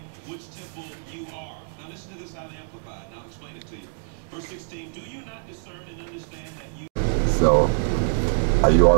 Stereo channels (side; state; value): left; silent; digital silence